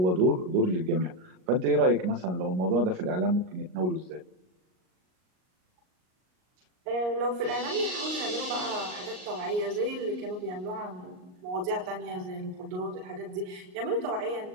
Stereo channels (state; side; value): late; left; 38 ms